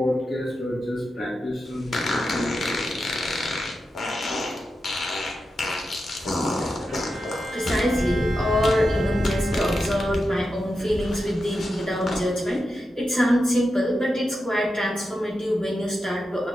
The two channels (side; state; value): both; normal; correlation 0.89